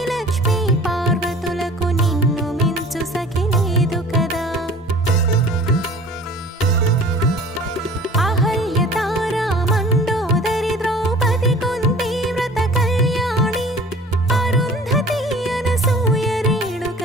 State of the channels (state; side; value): normal; both; correlation 0.46